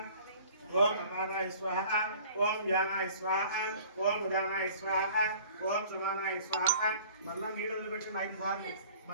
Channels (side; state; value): both; inverted; correlation -0.49